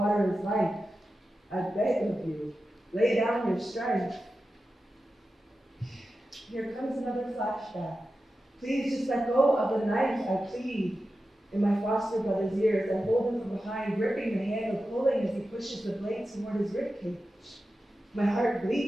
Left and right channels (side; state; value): both; normal; correlation 0.92